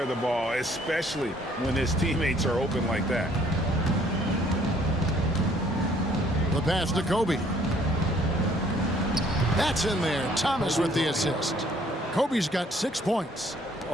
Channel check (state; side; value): normal; both; correlation 0.61